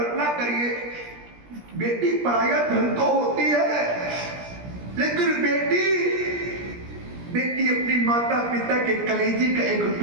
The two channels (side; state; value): left; late; 17 ms